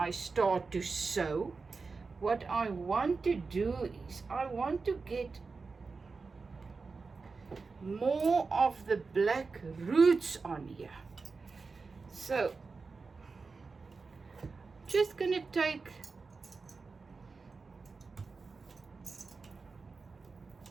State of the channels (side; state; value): left; quieter; 4.4 dB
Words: start to sew. What I want to do is I want to get more of the black roots on here. So just gonna take